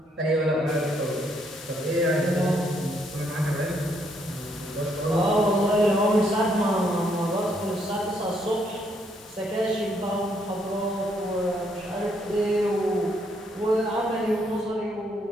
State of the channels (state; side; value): normal; both; correlation 0.72